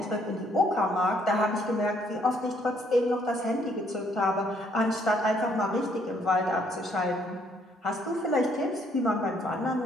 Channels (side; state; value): both; normal; correlation 0.67